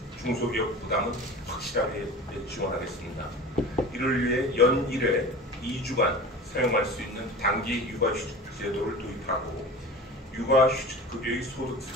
중소기업 부담은 확실하게 지원하겠습니다. 이를 위해 연 1회 2주간 사용할 수 있는 단기 육아휴직 제도를 도입하고 육아휴직급여의 소득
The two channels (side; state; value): both; normal; correlation 0.35